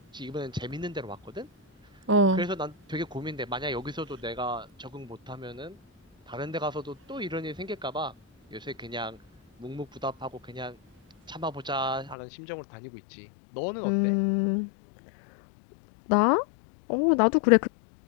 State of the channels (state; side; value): drops out; right; at 12.2 s